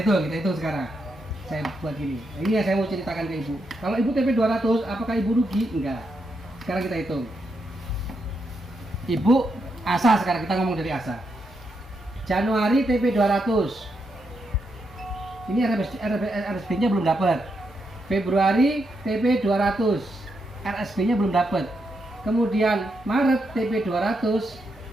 hitung sekarang. Saya buat gini. Ini yang saya mau ceritakan ke Ibu. Kalau Ibu TP 200, apakah Ibu rugi? Enggak. Sekarang kita hitung. Ibu Asa, sekarang kita ngomong dari Asa. Januari TP 200. Ini RSP-nya belum dapat. Februari TP 200. RSP-nya belum dapat. Kemudian Maret TP 200.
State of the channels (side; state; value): both; normal; correlation 0.82